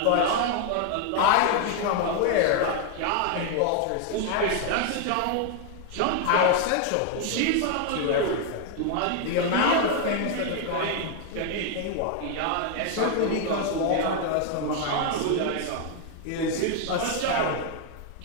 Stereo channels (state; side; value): different; both; correlation 0.00